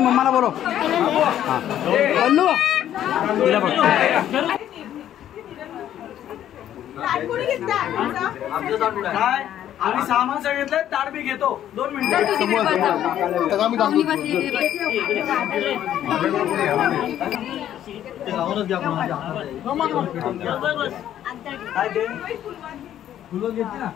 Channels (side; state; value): right; quieter; 11.2 dB